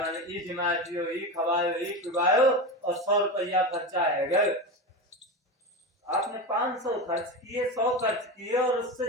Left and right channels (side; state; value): both; normal; correlation 0.21